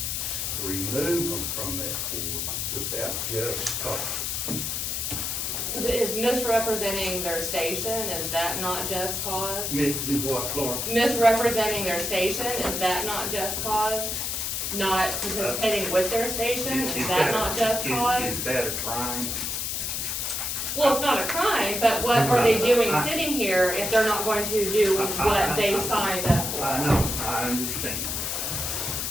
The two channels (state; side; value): noise; left; hiss, 2 dB below the sound